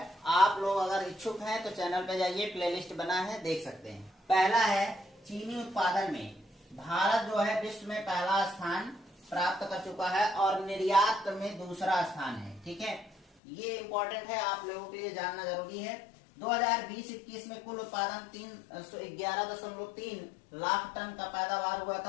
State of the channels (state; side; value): drops out; right; at 13.2 s